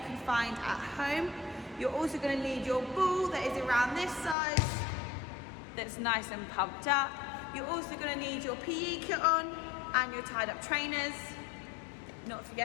can find at home. You're also going to need your ball that is around this size, that's nice and pumped up. You're also going to need your PE kit on and your tied up trainers, not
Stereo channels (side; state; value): right; drops out; at 4.4 s